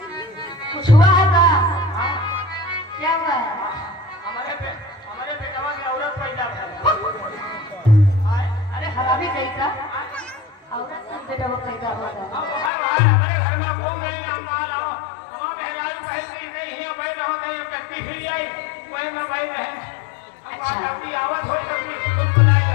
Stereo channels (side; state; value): right; drops out; at 12.7 s